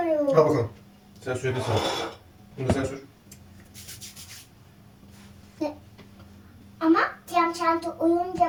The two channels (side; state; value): both; identical; correlation 1.00